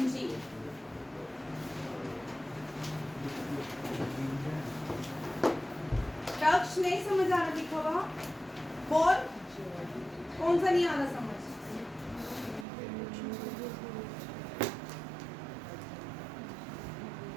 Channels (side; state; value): left; drops out; at 12.7 s